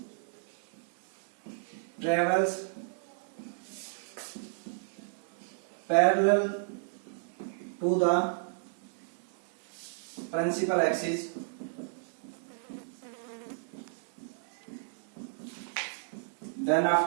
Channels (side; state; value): left; silent; 56 dB below the other